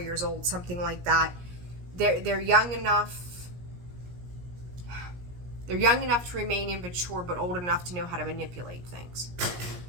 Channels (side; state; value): left; late; 17 ms